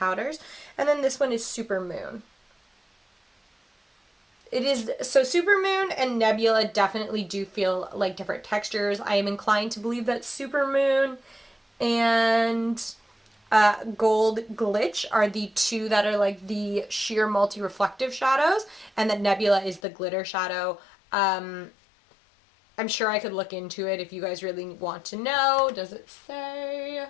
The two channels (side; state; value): right; drops out; at 19.8 s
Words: And then this one is Supermoon. It is, so Supermoon and Nebula definitely do feel like different textures. I am inclined to believe that Supermoon and Gold Glitch are the two that are like the sheer multi-reflective shadows, and that Nebula is the glitter shadow. I'm sure I could look into it if you guys really want to know. Does it say?